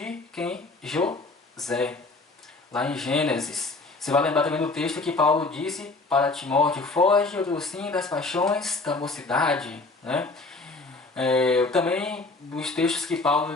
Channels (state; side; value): quieter; right; 3.5 dB